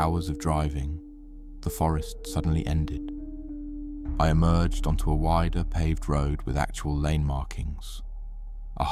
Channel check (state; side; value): identical; both; correlation 1.00